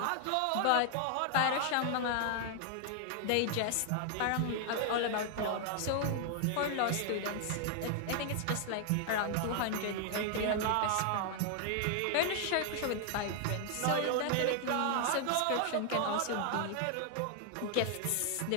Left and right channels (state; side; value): different; both; correlation 0.00